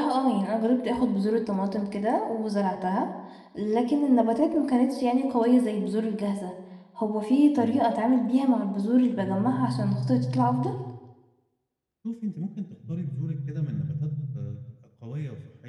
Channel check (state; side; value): identical; both; correlation 1.00